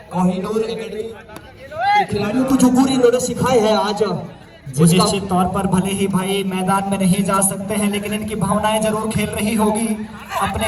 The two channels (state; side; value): identical; both; correlation 1.00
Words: कोहिनूर एकेडमी खिलाड़ियों को जो पूरी इन्होंने सिखाए हैं आज, निश्चित तौर पर भले ही भाई मैदान में नहीं जा सकते हैं, लेकिन इनकी भावनाएं जरूर खेल रही होगी। अपने